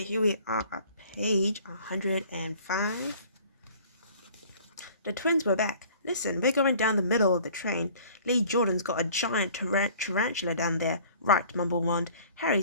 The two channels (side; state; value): both; inverted; correlation -0.50